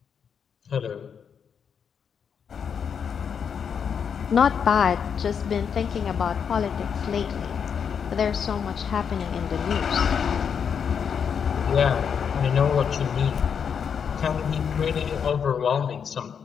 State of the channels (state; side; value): quieter; right; 7.1 dB